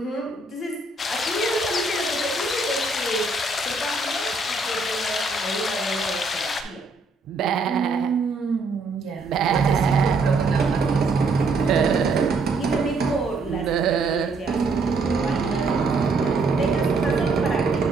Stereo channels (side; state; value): left; quieter; 3.5 dB